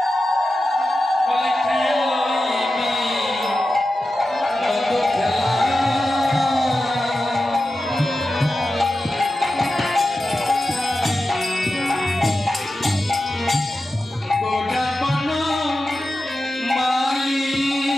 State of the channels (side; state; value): both; normal; correlation 0.92